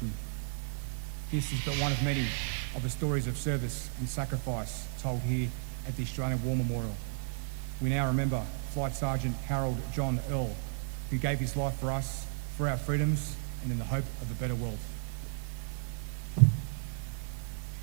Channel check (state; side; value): silent; left; digital silence